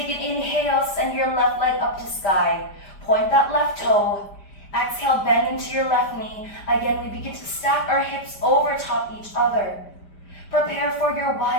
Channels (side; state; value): right; late; 5.0 ms